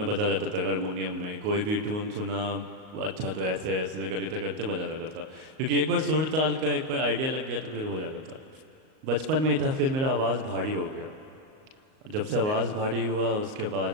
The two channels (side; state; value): left; late; 38 ms